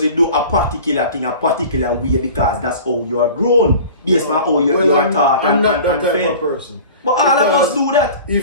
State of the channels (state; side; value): inverted; both; correlation -0.41